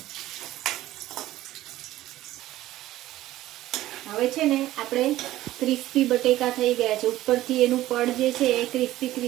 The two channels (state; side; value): quieter; left; 15.2 dB